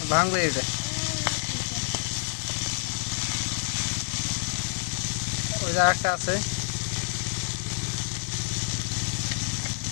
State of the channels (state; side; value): silent; right; digital silence